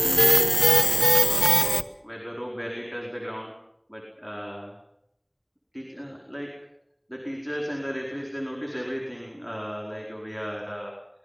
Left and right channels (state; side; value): identical; both; correlation 1.00